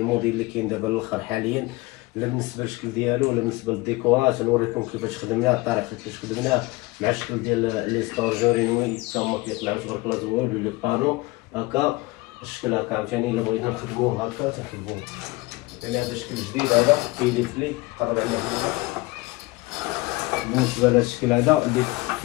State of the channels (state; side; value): quieter; right; 22.1 dB